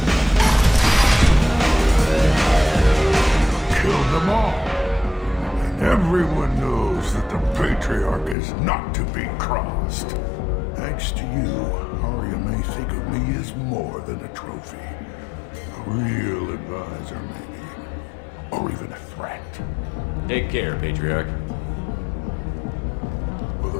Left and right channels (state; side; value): drops out; right; at 8.3 s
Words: Killed them all. And everyone knows that the Patriarch is not to be crossed. Thanks to you, Arya may think of me as more than a trophy. A real advisor, maybe. Or even a threat. Take care, Patriarch. For